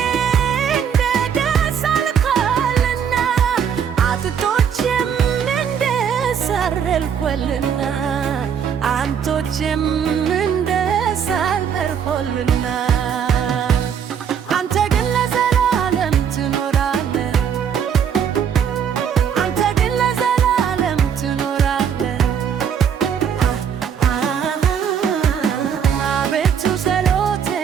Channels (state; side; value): quieter; left; 7.9 dB